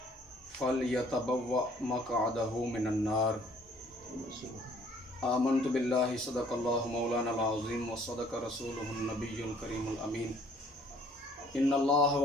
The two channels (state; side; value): normal; both; correlation 0.59